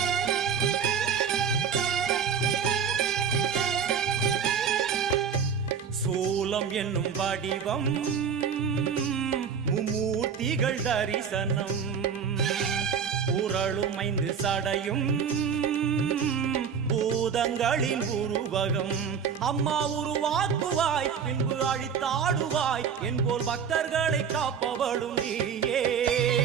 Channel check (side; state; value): left; quieter; 6.9 dB